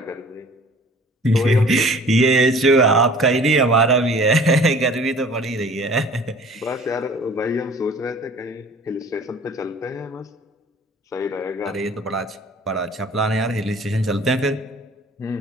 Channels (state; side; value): normal; both; correlation 0.48